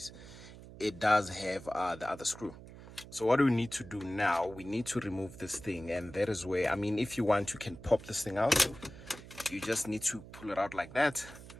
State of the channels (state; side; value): noise; right; hum, 16 dB below the sound